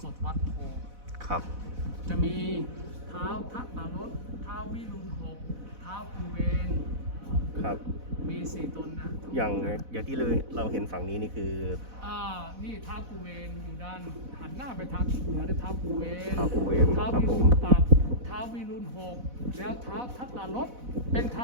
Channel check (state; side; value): late; left; 4.0 ms